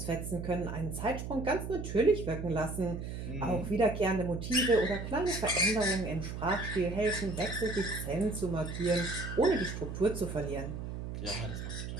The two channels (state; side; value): noise; right; hum, 6 dB below the sound